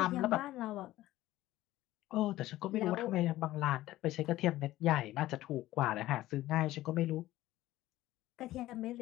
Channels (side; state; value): right; quieter; 15.7 dB